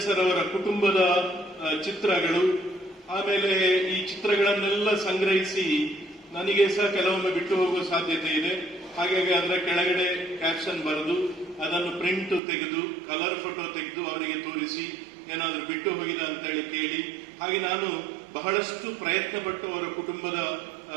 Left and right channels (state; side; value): drops out; left; at 12.4 s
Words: ಸರ್ ಅವರ ಕುಟುಂಬದ ಚಿತ್ರಗಳು, ಆಮೇಲೆ ಈ ಚಿತ್ರಗಳನ್ನೆಲ್ಲ ಸಂಗ್ರಹಿಸಿ ನನಗೆ ಸಹ ಕೆಲವೊಮ್ಮೆ ಬಿಟ್ಟು ಹೋಗುವ ಸಾಧ್ಯತೆ ಇದೆ. ಹಾಗಾಗಿ ಅದರ ಕೆಳಗಡೆ ಕ್ಯಾಪ್ಷನ್ ಬರೆದು ಅದನ್ನು ಪ್ರಿಂಟ್ ತೆಗೆದು ಕಲರ್ ಫೋಟೋ ತೆಗೆದು ಅವರಿಗೆ ತೋರಿಸಿ ಏನಾದರೂ ಬಿಟ್ಟು ಹೋಗಿದ ಅಂತೇಳಿ ಕೇಳಿ, ಹಾಗೆ ನಾನು ಬಹಳಷ್ಟು ಪ್ರಯತ್ನ ಪಟ್ಟು ಅವರ ಕುಟುಂಬದ